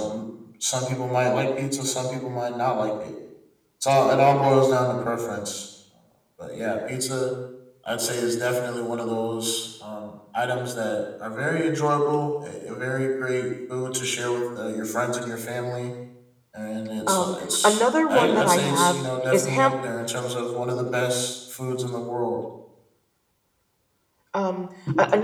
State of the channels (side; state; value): both; identical; correlation 1.00